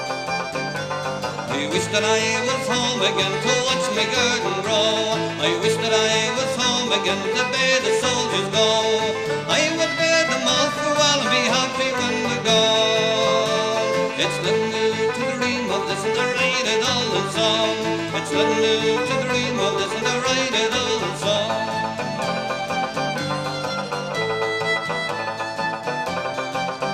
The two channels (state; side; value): identical; both; correlation 1.00